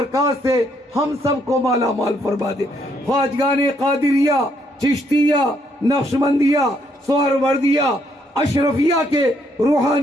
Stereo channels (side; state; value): both; normal; correlation 0.71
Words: سے ہم سب کو مالا مال فرما دے۔ خواجگان قادریہ، چشتیہ، نقشبندیہ، سہروردیہ، اشرفیہ کے